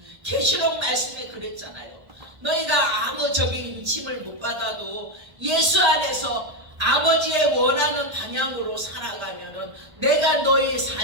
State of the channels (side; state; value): left; late; 1.3 ms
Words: 계시록 말씀에 그랬잖아요. 너희가 아무 인침을 못 받아도 예수 안에서 아버지의 원하는 방향으로 살아가면은 내가 너희